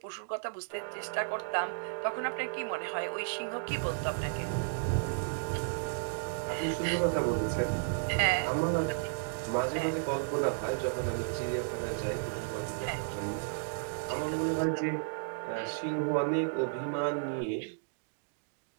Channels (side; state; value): left; silent; digital silence